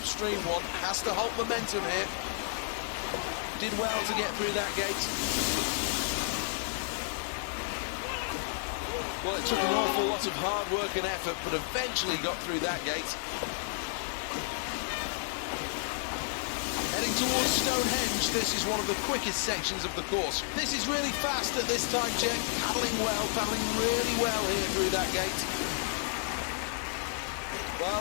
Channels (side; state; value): right; silent; 57 dB below the other